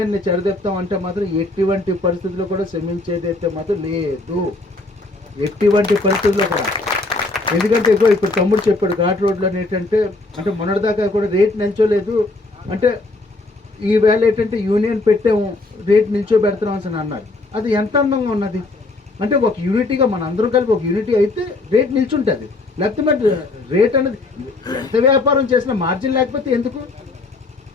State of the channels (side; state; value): right; quieter; 3.2 dB